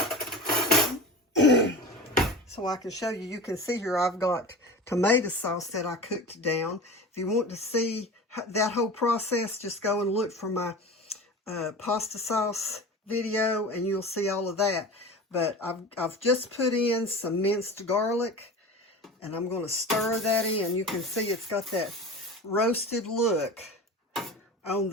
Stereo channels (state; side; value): normal; both; correlation 0.33